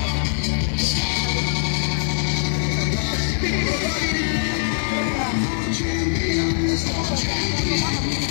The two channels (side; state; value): right; silent; digital silence